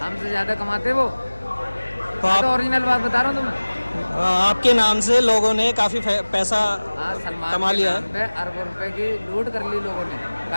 हमसे ज़्यादा कमाते वो। तो मैं तो आप ओरिजिनल बात बता रहा हूँ तुम्हें। आपके नाम से लोगों ने काफ़ी पैसा हाँ, सलमान कमा के लिया नाम पे अरबों रुपए की लूट कर ली लोगों ने।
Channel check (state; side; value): inverted; both; correlation -1.00